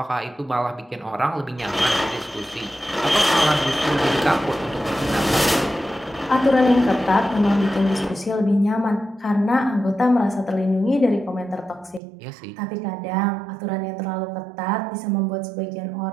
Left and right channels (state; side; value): drops out; left; at 12.0 s